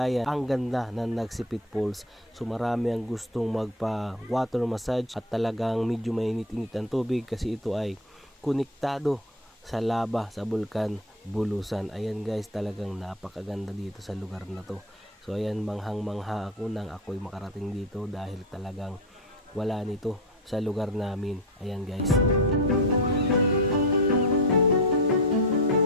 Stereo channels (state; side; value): normal; both; correlation 0.23